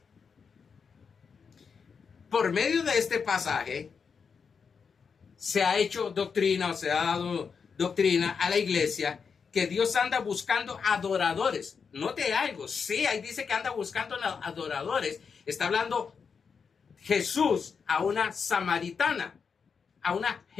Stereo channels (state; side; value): quieter; right; 5.9 dB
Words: Por medio de este pasaje se ha hecho doctrina o se ha dado doctrina a la iglesia que Dios anda buscando adoradores. Note algo, sí, ahí dice que anda buscando adoradores. Está hablando Jesús a una samaritana, a una